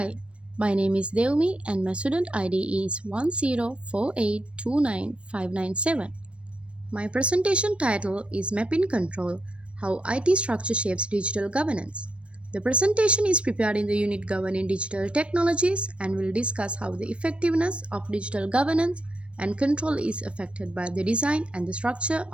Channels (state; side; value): late; left; 0.060 ms